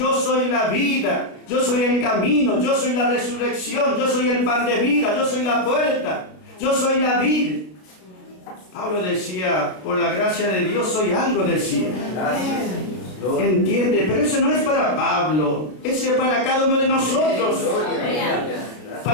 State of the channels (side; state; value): right; late; 33 ms